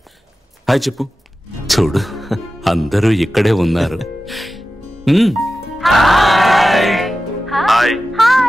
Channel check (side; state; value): both; normal; correlation 0.94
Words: Hi చెప్పు. చూడు అందరూ ఇక్కడే ఉన్నారు.